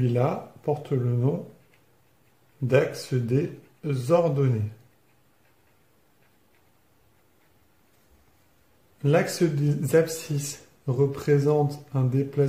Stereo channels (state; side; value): identical; both; correlation 1.00